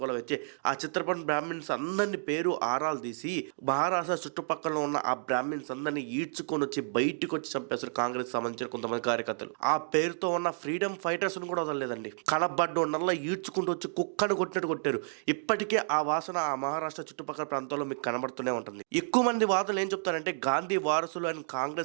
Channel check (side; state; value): left; silent; digital silence